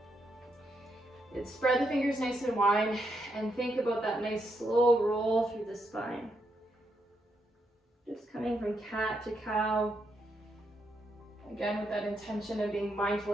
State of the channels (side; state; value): both; normal; correlation 0.79